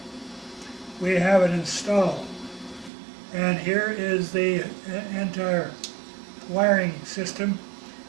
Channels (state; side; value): drops out; left; at 2.9 s